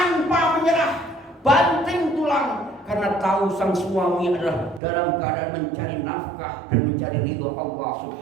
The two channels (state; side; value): drops out; left; at 4.8 s